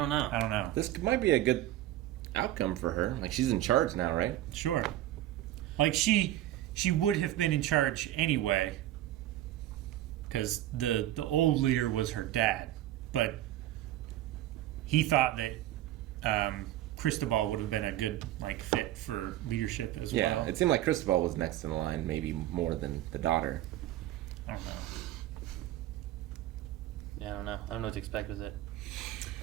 know. This might be a good outcome for her. Like, she's in charge now, right? Sure. Like, she would have been in charge anyway, because the old leader was her dad, but he thought that Cristobal would have been a good, like, fit for leadership as well. Yeah, it seemed like Cristobal was next in line, maybe more than the daughter. I don't know. Yeah, I don't know. I don't know what to expect with it.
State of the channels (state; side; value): quieter; left; 13.8 dB